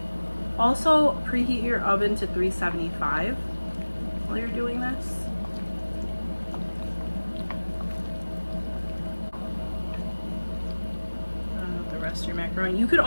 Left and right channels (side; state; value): both; inverted; correlation -1.00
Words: Also, preheat your oven to 375 while you're doing this. The rest of your macaroni. You could